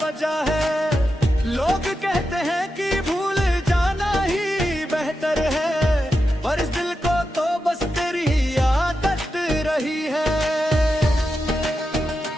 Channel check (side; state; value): both; normal; correlation 0.89